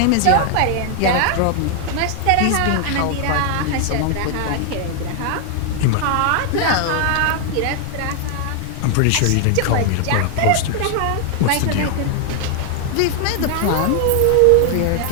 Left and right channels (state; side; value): different; both; correlation 0.00